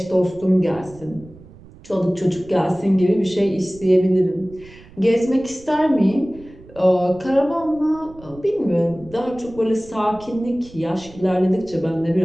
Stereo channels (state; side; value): noise; right; rumble, 21 dB below the sound